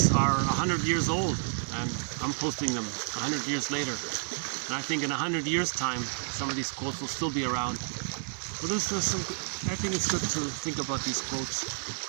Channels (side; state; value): left; silent; 58 dB below the other